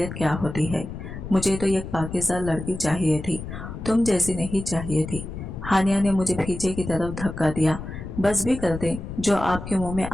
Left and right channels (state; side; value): noise; left; rumble, 9 dB below the sound